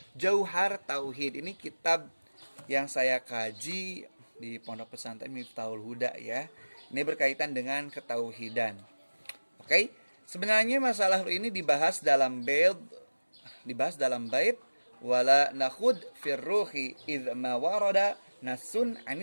Jauhar Tauhid. Ini kitab yang saya kaji di Pondok Pesantren Miftahul Huda ya. Ini berkaitan dengan ketauhidan. Oke, sebenarnya masalah ruh ini dibahas dalam bait wala nakhud fir ruhi idz ma warada nasun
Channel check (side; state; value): both; inverted; correlation -1.00